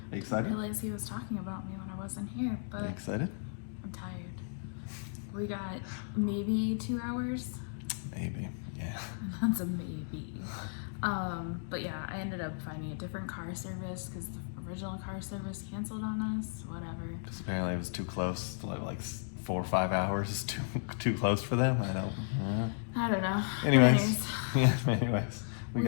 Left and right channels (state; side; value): silent; right; digital silence